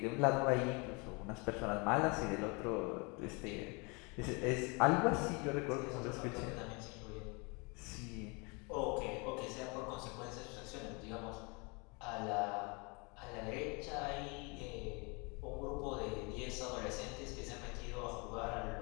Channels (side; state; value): right; quieter; 30.2 dB